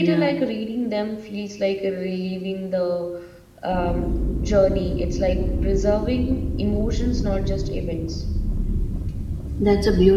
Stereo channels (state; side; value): identical; both; correlation 1.00